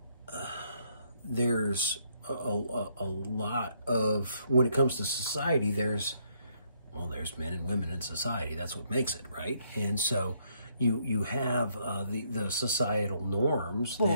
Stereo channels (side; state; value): both; inverted; correlation -0.71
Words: there's a lot of, when it comes to society, there's men and women in society. That's what makes it, right? And so you have the societal norms